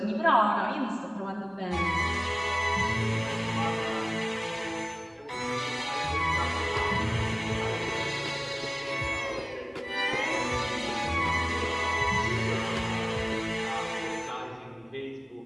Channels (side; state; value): both; identical; correlation 1.00